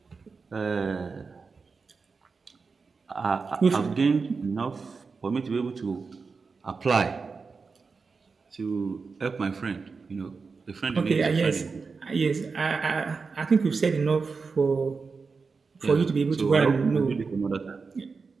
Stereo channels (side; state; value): left; quieter; 4.7 dB